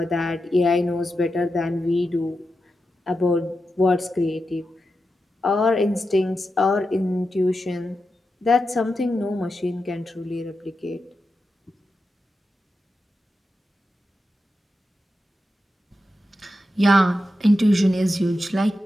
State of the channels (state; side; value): normal; both; correlation 0.89